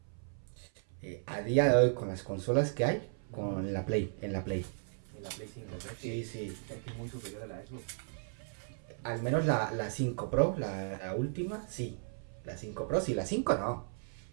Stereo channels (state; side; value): silent; left; 54 dB below the other